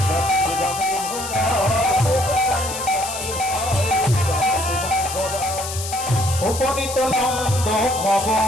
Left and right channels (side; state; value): left; noise; hiss, 7 dB below the sound